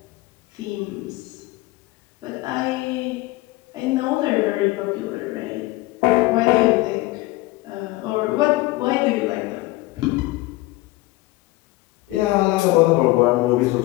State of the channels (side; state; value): right; quieter; 20.0 dB